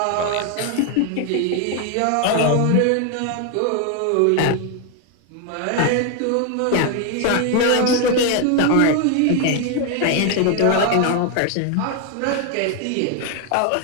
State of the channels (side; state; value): both; different; correlation 0.00